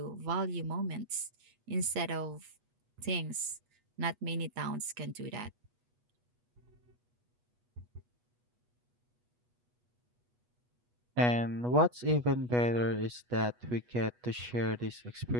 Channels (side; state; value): left; late; 8.2 ms